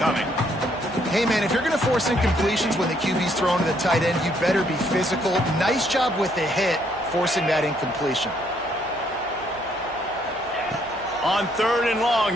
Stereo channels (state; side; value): noise; right; hum, 23 dB below the sound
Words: Hey, man, if you're going to force incompletions when the QB's thrown to the tight end, you better be physical. Nice job with the hit, forcing that incompletion. On 3rd and